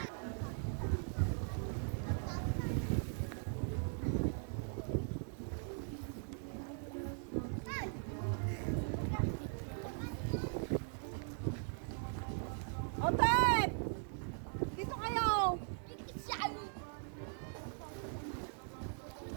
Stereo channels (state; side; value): silent; left; 51 dB below the other